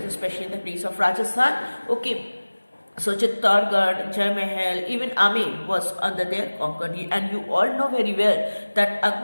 especially in the place of Rajasthan. Okay, so Chittorgarh, Jai Mahal, even Amer was under their conquer. And you all know very well that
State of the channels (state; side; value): inverted; both; correlation -1.00